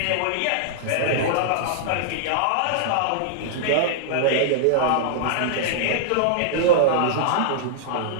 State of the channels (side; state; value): both; different; correlation -0.01